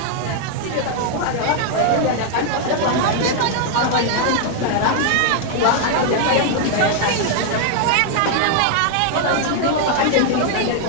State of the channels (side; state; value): both; different; correlation 0.00